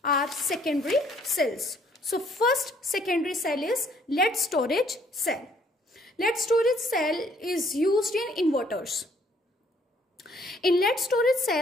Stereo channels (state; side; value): normal; both; correlation 0.63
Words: our secondary cells. So first secondary cell is lead storage cell. Lead storage cell is used in inverters. In lead storage